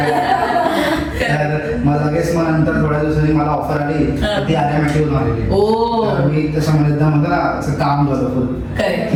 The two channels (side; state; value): both; identical; correlation 1.00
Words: तर मग लगेच मग नंतर थोड्या दिवसांनी मला ऑफर आली तर ती आर्यामॅटिवरून आलेली. ओ. तर मी तसं म्हणतो ना असं काम झालं फुल. करेक्ट,